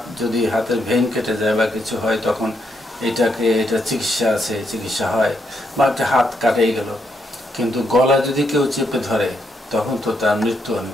যদি হাতের ভেইন কেটে যায় বা কিছু হয়, তখন এটা চিকিৎসা হয়, বা একটা হাত কাটেই গেল, কিন্তু গলা যদি কেউ চেপে ধরে তখন তো তার মৃত্যু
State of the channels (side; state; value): both; normal; correlation 0.78